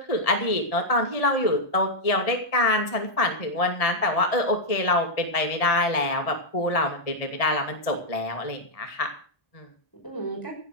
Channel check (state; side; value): late; right; 1.7 ms